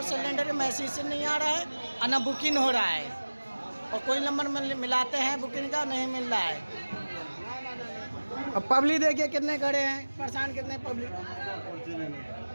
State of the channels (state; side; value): inverted; both; correlation -1.00